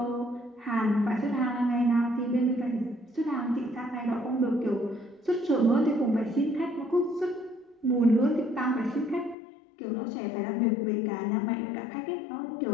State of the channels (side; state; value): right; drops out; at 9.3 s